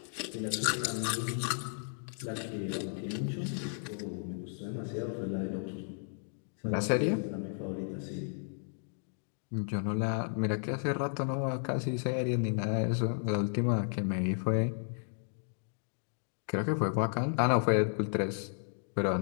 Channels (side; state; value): right; silent; digital silence